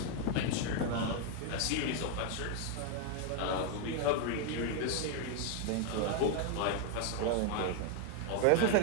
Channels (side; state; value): both; different; correlation 0.01